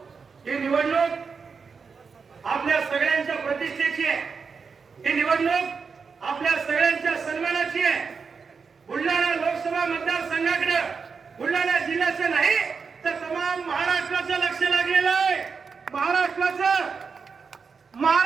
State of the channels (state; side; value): quieter; left; 5.4 dB